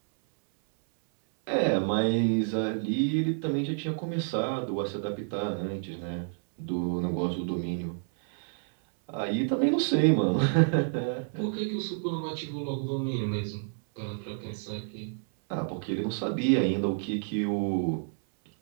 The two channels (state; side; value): silent; left; 58 dB below the other